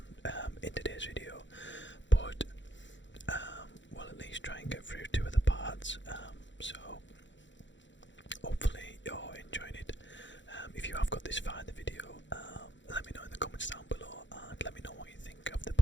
in today's video, but we'll at least try and get through 2 of the parts, so hopefully you're enjoying it. If you have got this far in the video, let me know in the comments down below and let me know what you think of the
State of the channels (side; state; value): right; late; 0.54 ms